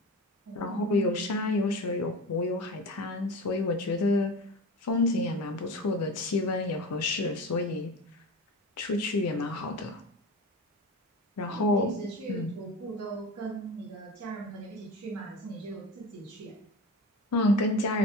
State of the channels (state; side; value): normal; both; correlation 0.30